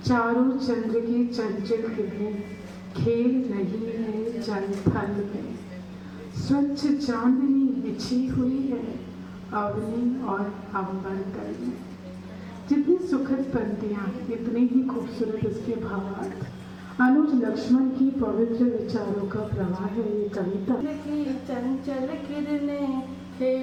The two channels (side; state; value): both; identical; correlation 1.00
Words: चारों चंद्र की चंचल किरणें खेल रही है जल थल में, स्वच्छ चांदनी बिछी हुई है अवनी और अंबर तल में। जितनी सुखद पंक्तियाँ, इतने ही खूबसूरत इसके भावार्थ। अनुज लक्ष्मण की पवित्र विचारों का प्रवाह है ये कविता। की चंचल किरणें